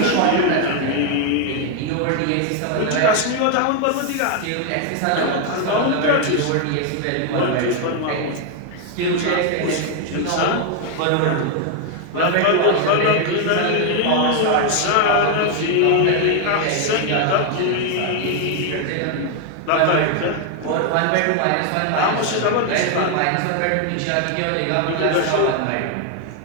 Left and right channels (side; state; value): both; different; correlation 0.01